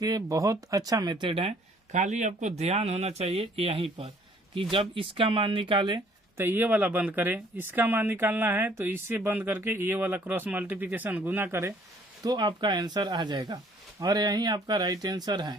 बहुत अच्छा मेथड है, खाली आपको ध्यान होना चाहिए यहीं पर कि जब इसका मान निकाले तो ये वाला बंद करें, इसका मान निकालना है तो इससे बंद करके ये वाला क्रॉस मल्टीप्लिकेशन गुना करें, तो आपका आंसर आ जाएगा, और यही आपका राइट आंसर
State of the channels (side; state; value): both; normal; correlation 0.60